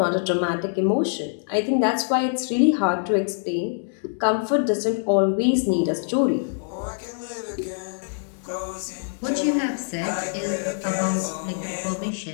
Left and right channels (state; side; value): silent; right; digital silence